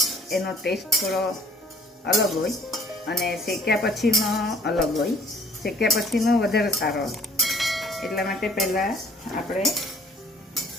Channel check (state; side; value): normal; both; correlation 0.55